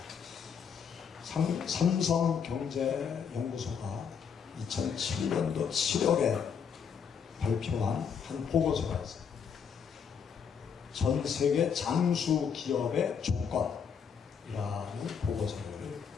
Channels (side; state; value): right; quieter; 6.9 dB